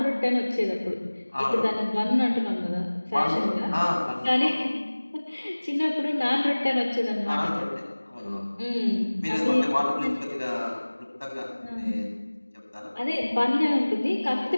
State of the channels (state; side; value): inverted; both; correlation -1.00